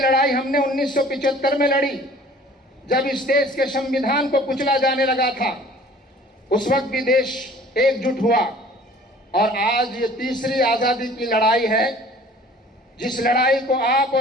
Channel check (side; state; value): both; normal; correlation 0.50